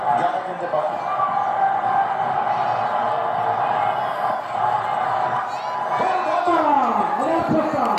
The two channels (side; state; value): both; identical; correlation 1.00